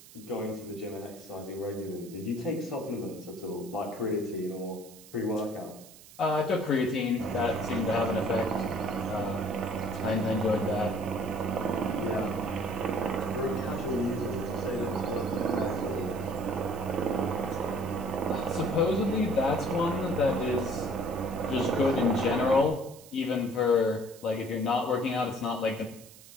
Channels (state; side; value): noise; right; hiss, 20 dB below the sound